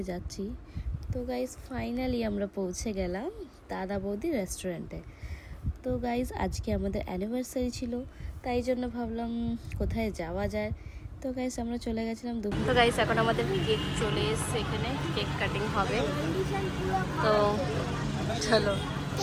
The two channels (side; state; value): both; identical; correlation 1.00